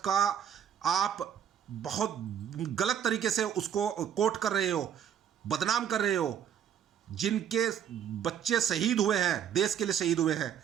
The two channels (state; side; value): quieter; left; 9.2 dB